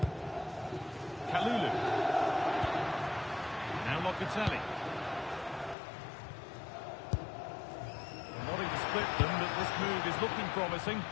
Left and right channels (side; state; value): right; drops out; at 5.8 s